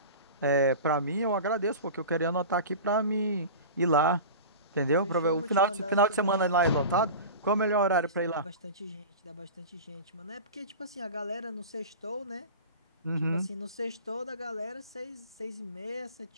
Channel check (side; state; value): both; inverted; correlation -0.32